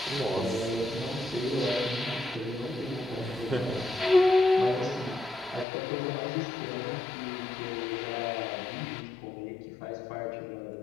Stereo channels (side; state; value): right; drops out; at 5.7 s